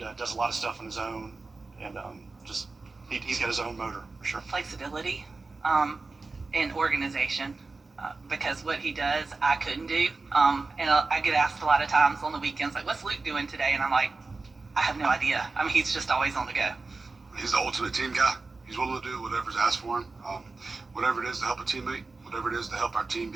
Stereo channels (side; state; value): left; quieter; 3.8 dB